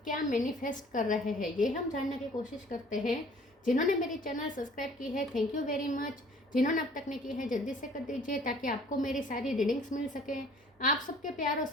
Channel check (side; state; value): both; normal; correlation 0.53